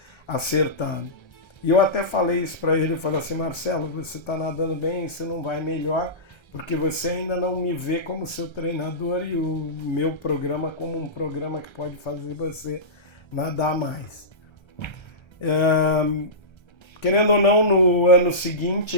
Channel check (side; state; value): right; late; 1.3 ms